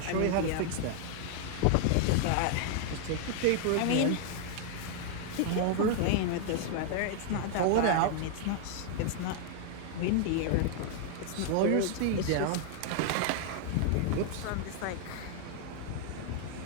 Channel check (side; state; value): both; different; correlation 0.00